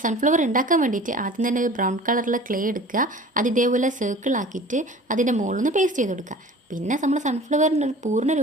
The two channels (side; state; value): both; normal; correlation 0.43